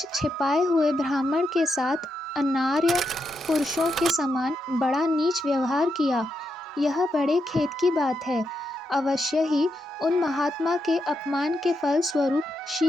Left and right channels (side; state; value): both; normal; correlation 0.83